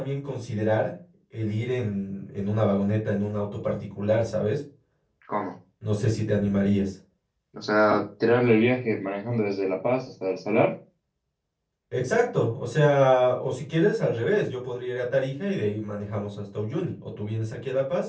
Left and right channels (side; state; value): both; identical; correlation 1.00